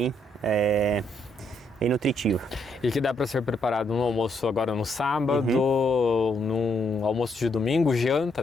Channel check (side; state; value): both; normal; correlation 0.75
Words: nutritiva. E que dá para ser preparado no almoço agora no sábado, num almoço de domingo, janta